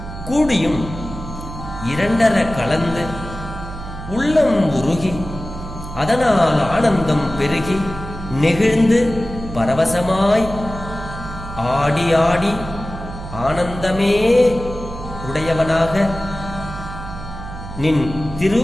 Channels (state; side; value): noise; right; hum, 10 dB below the sound